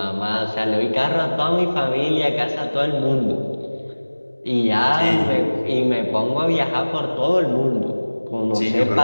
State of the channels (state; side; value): inverted; both; correlation -1.00